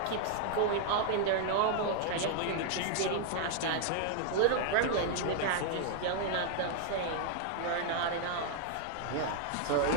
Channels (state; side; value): different; both; correlation 0.00